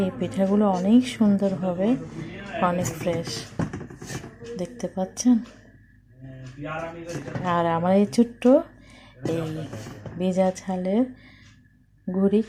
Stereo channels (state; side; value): identical; both; correlation 1.00